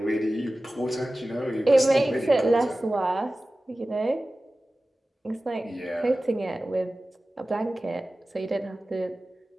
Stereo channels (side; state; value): both; normal; correlation 0.96